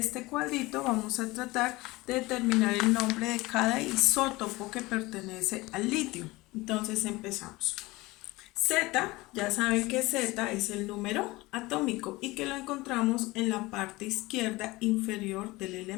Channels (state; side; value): quieter; right; 21.1 dB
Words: cuadrito, vamos a tratar de determinar el nombre de cada isótopo que pertenece al litio. Entonces empezamos. Z, ya saben que Z es el número atómico y que lo encontramos en la parte izquierda inferior del